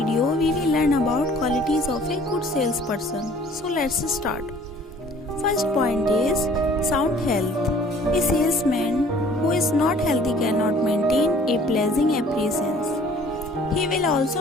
we will learn about qualities of a good salesperson. So let's start. First point is sound health. A salesman who is not healthy cannot maintain a pleasing appearance. He will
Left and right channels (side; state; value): both; normal; correlation 0.53